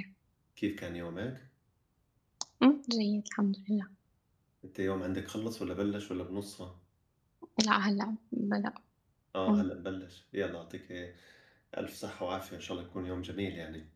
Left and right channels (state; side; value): identical; both; correlation 1.00